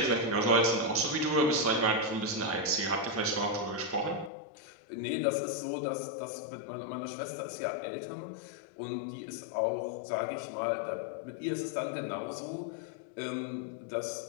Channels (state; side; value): drops out; right; at 4.3 s